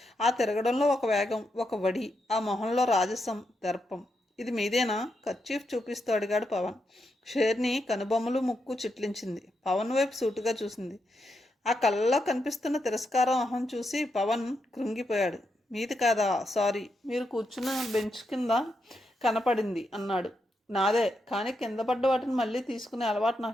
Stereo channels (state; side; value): normal; both; correlation 0.83